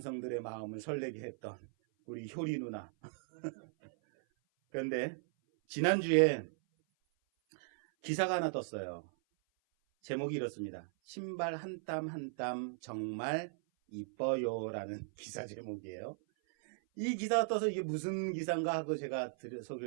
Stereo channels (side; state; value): left; silent; 53 dB below the other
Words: 마음을 설레게 했던 우리 효리 누나. 그런데 지난주에 기사가 하나 떴어요. 제목이 이렇습니다. 신발 한 땀 한 땀 정말 이뻐요라는 기사 제목이에요. 이 기사가 떠서 이게 무슨 기사인가 하고 제가